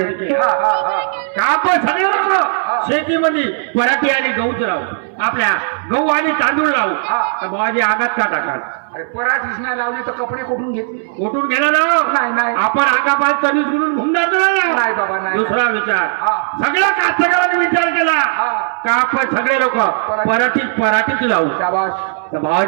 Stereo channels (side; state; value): left; silent; digital silence